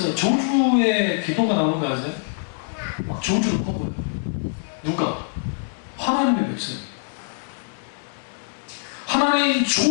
저주의 기도가 나오는 거 아세요? 막 저주를 퍼부어요. 누가? 하나님의 백성이. 하나님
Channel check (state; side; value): silent; right; digital silence